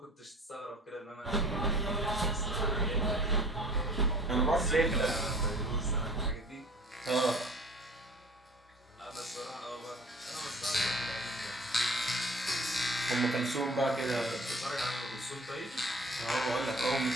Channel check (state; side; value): normal; both; correlation 0.47